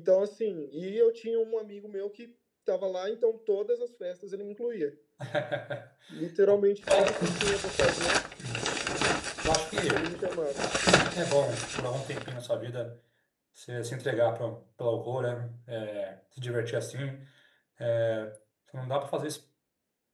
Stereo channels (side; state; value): both; identical; correlation 1.00